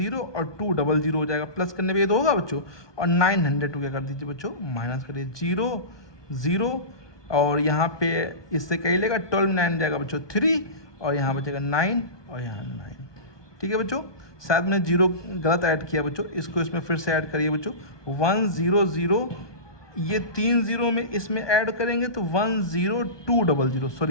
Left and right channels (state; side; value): late; right; 1.2 ms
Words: और 2 00 हो जाएगा, प्लस करने पे ये तो होगा बच्चों, और 900 क्या कर दीजिए बच्चों, माइनस करिए, 0 0, और यहाँ पे इससे कहीं लेगा 12 9 जाएगा बच्चों 3, और यहाँ बचेगा 9, और यहाँ 9, ठीक है बच्चों। शायद मैं जीरो गलत ऐड किया बच्चों, इसको इसमें फिर से ऐड करिए बच्चों, 1 0 0, ये 3 जीरो में इसमें ऐड करेंगे तो 1 0 2 00,